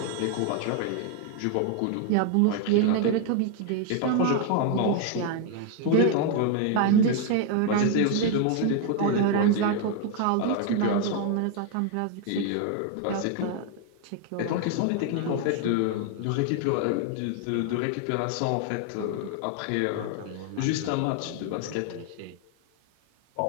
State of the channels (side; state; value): both; different; correlation 0.01